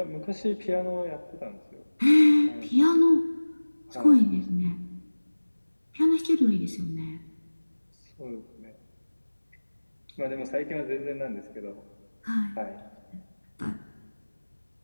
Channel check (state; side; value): inverted; both; correlation -1.00